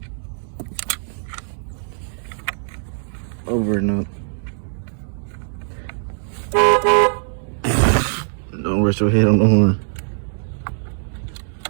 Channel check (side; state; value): left; silent; digital silence